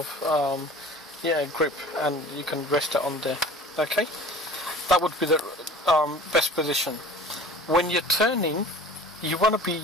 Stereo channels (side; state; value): both; normal; correlation 0.44